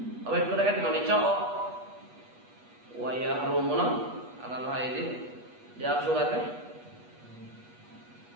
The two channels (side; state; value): left; late; 8.3 ms